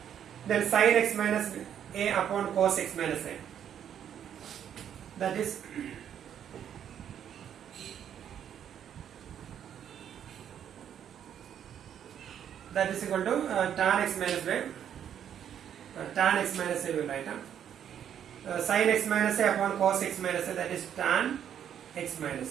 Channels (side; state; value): left; quieter; 9.3 dB